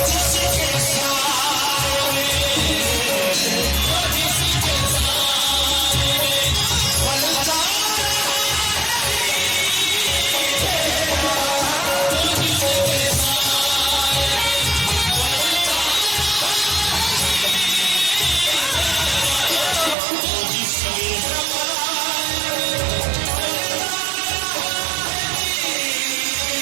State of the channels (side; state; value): left; drops out; at 20.0 s